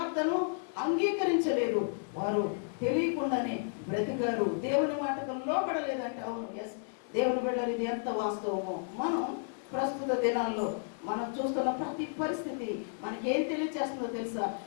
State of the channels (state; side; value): silent; right; digital silence